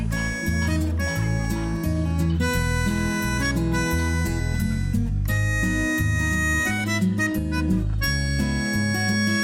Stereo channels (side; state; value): both; identical; correlation 1.00